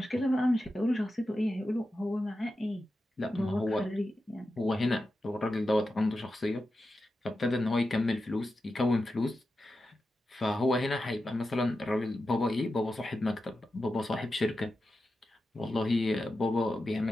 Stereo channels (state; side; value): normal; both; correlation 0.91